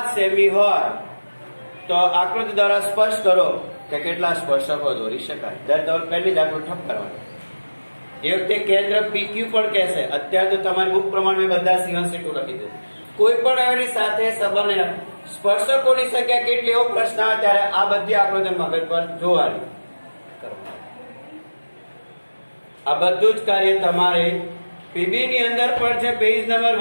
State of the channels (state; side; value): inverted; both; correlation -1.00